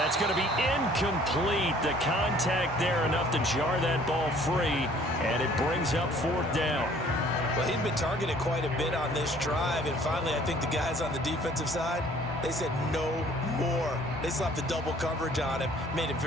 going to be incomplete. The contact there enough to jar that ball free, and it brings up 4th down. Well, he'd been targeted quite a bit on this drive, and finally I think the guys on the defensive side, they said no more. They slapped the double coverage on him, made it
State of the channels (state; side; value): normal; both; correlation 0.56